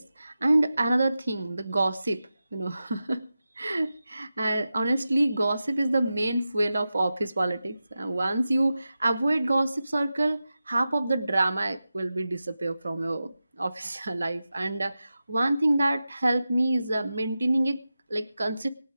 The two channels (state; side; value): inverted; both; correlation -0.93